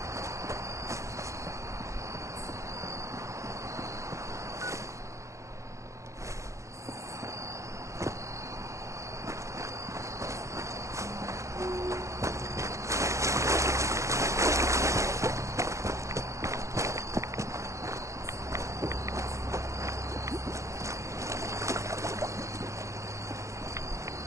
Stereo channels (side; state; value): left; late; 0.15 ms